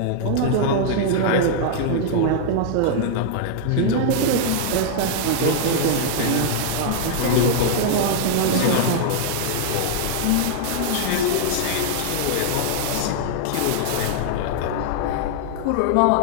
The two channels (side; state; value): both; different; correlation -0.01